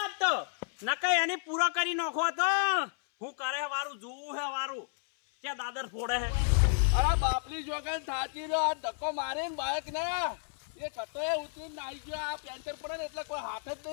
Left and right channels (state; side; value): silent; right; 57 dB below the other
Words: તો નકઈ એની પૂરો કરી નાખો તો હું કરે હે વારું જોવું હે વારું ક્યાં દાદર ફોડે હે અરે બાપલી જોગન થાચી રહ્યો આ ધક્કો મારે ને બાઈક ને એ કટો એ ઉતરીને નાઈ ગયો આ પેન્ચર પડે ને એટલે કોઈ હાથ જ